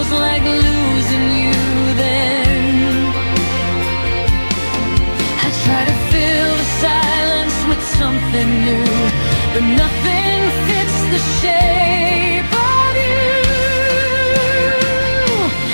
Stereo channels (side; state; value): both; inverted; correlation -1.00